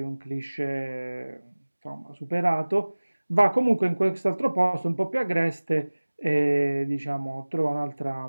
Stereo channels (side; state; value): both; inverted; correlation -1.00